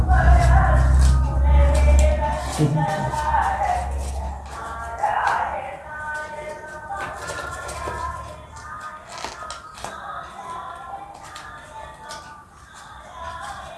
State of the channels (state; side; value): identical; both; correlation 1.00